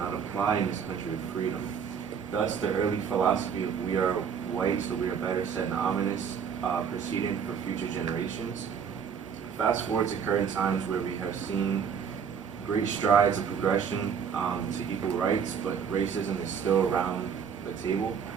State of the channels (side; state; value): left; quieter; 7.2 dB